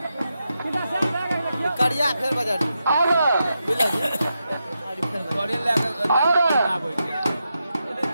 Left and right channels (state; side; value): inverted; both; correlation -0.86